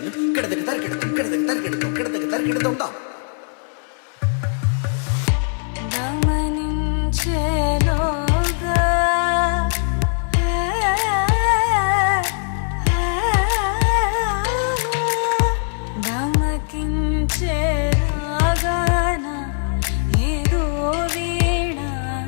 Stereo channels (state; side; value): silent; right; 59 dB below the other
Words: కిడతక తరిగిడతాం కిడతక తరిగిడతాం కిడతక తరిగిడతాం దా. గమనించేలోగా గమకించేలాగాన ఏదో వీణ